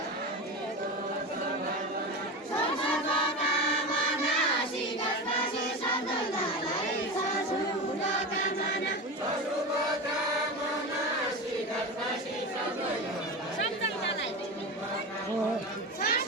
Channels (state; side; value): normal; both; correlation 0.24